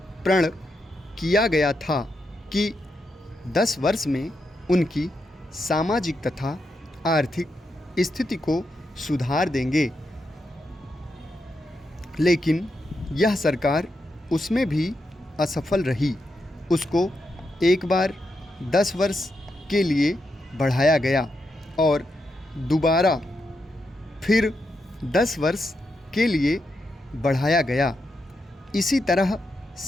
प्रण किया गया था कि 10 वर्ष में उनकी सामाजिक तथा आर्थिक स्थिति को सुधार देंगे, लेकिन यह सरकार उसमें भी असफल रही। उसको एक बार 10 वर्ष के लिए बढ़ाया गया और दोबारा फिर 10 वर्ष के लिए बढ़ाया गया। इसी तरह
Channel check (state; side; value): normal; both; correlation 0.84